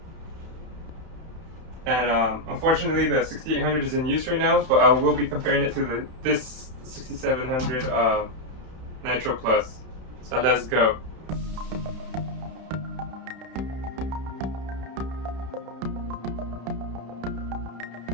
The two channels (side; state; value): left; late; 31 ms